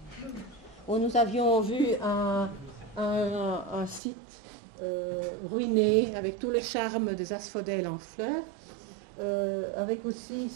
où nous avions vu un site ruiné avec tout le charme des asphodèles en fleurs, avec aussi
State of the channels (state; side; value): drops out; left; at 4.0 s